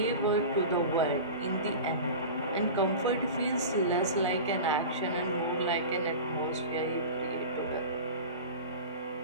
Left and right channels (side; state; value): both; inverted; correlation -0.32